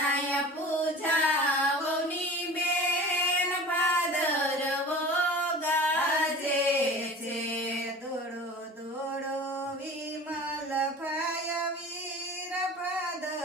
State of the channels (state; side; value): normal; both; correlation 0.39